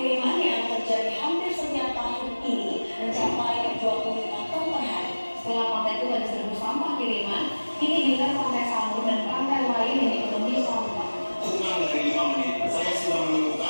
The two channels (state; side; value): inverted; both; correlation -1.00